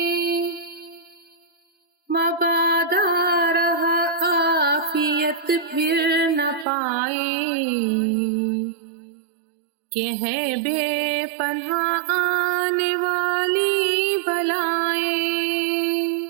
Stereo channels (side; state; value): left; drops out; at 6.7 s